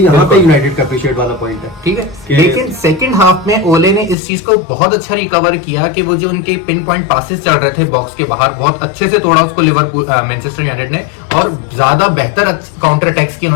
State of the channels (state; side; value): drops out; right; at 4.2 s